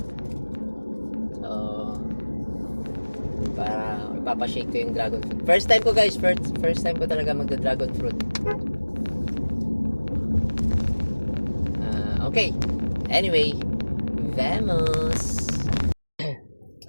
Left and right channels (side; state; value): both; inverted; correlation -1.00